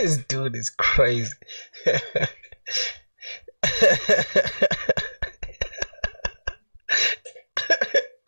dude is crazy.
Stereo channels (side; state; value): both; inverted; correlation -1.00